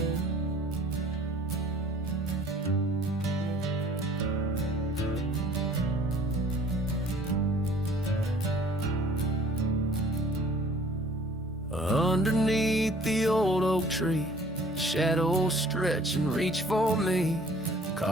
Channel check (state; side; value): normal; both; correlation 0.53